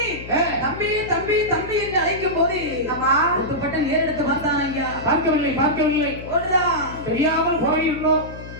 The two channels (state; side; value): noise; left; hum, 13 dB below the sound